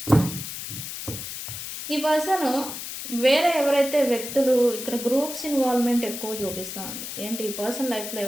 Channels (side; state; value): left; noise; hiss, 8 dB below the sound